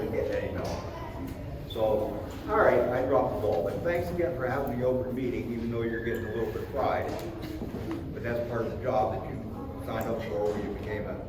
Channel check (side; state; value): both; identical; correlation 1.00